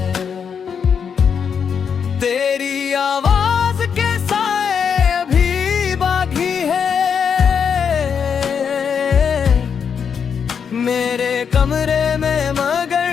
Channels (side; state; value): right; quieter; 6.9 dB